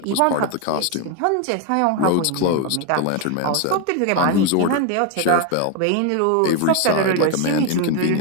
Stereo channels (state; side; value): different; both; correlation 0.01